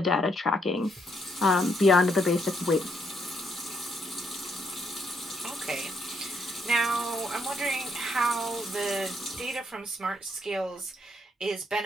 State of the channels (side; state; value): both; normal; correlation 0.74